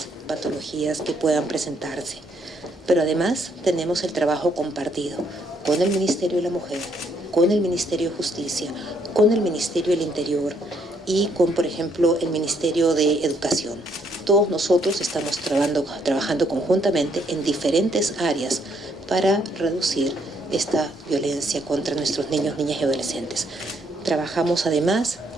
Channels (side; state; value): both; normal; correlation 0.70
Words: patologías que puedan presentarse. Pero además tenemos el trabajo compartido con el Ministerio de la Mujer, con el Ministerio de Justicia, con el Ministerio del Interior y con, por ejemplo, el Ministerio de Educación. Todos nosotros estamos trabajando conjuntamente en diferentes áreas para reducir esta violencia contra nuestros niños, niñas y adolescentes. Trabajamos además